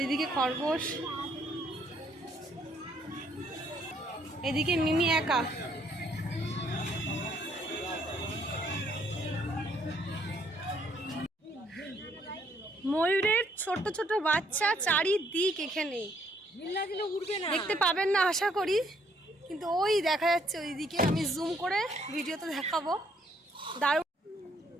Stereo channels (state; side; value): normal; both; correlation 0.68